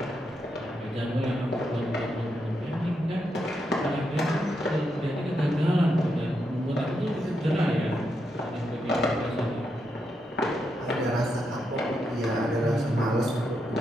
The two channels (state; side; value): normal; both; correlation 0.83